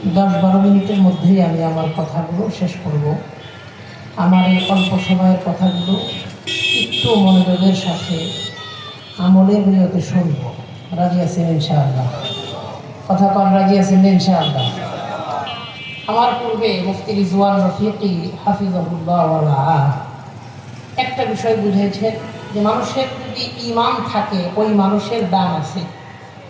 10-12 মিনিটের মধ্যেই আমি আমার কথাগুলো শেষ করব। আমার এই অল্প সময়ের কথাগুলো একটু মনোযোগের সাথে আমলের নিয়তে শুনব। রাজি আছেন ইনশাআল্লাহ? কথা কন, রাজি আছেন ইনশাআল্লাহ? আমার পূর্বে মুফতি রিজওয়ান রফিকি হাফিজাহুল্লাহ ওয়া রাআহ একটা বিষয় বুঝেছেন যে মানুষের যদি ঈমান থাকে ওই মানুষের দাম আছে।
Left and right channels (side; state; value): both; identical; correlation 1.00